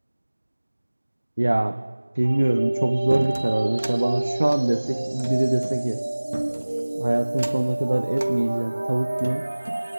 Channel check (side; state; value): both; inverted; correlation -1.00